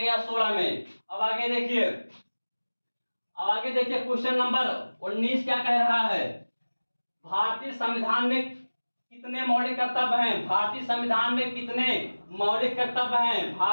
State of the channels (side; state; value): both; inverted; correlation -1.00